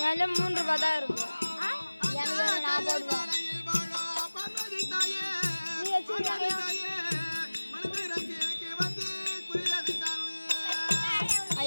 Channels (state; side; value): inverted; both; correlation -1.00